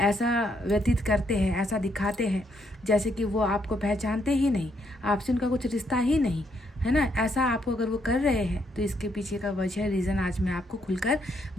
व्यतीत करते हैं, ऐसा दिखाते हैं जैसे कि वो आपको पहचानते ही नहीं, आपसे उनका कुछ रिश्ता ही नहीं, है ना। ऐसा आपको अगर वो कर रहे हैं तो इसके पीछे का वजह, रीज़न आज मैं आपको खुलकर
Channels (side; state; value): both; normal; correlation 0.74